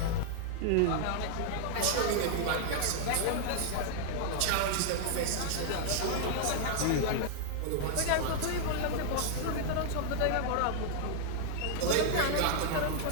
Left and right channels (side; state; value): both; different; correlation -0.01